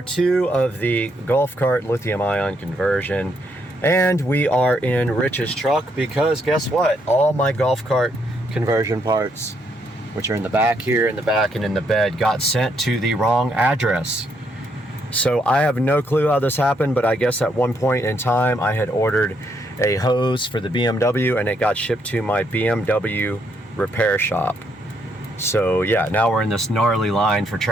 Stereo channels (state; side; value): normal; both; correlation 0.74